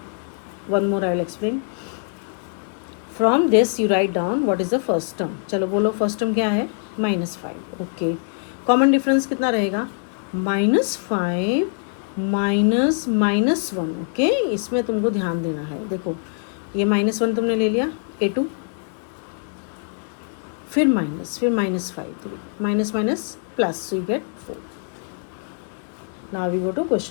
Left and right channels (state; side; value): silent; right; 59 dB below the other